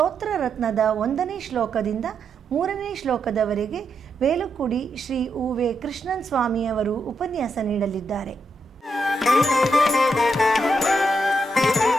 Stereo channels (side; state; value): both; normal; correlation 0.81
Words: ರತ್ನದ 1ನೇ ಶ್ಲೋಕದಿಂದ 3ನೇ ಶ್ಲೋಕದವರೆಗೆ ವೇಲುಕುಡಿ ಶ್ರೀ ಉ.ವೆ. ಕೃಷ್ಣನ್ ಸ್ವಾಮಿ ಅವರು ಉಪನ್ಯಾಸ ನೀಡಲಿದ್ದಾರೆ.